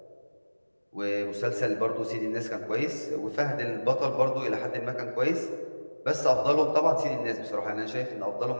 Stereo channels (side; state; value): both; inverted; correlation -1.00